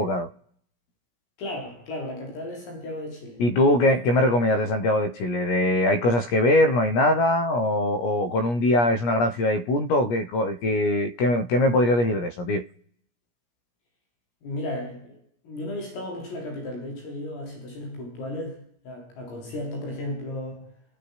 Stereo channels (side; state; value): right; late; 17 ms